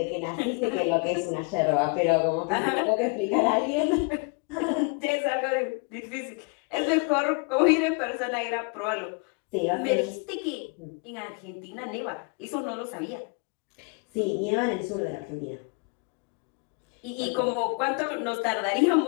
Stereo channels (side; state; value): right; quieter; 33.2 dB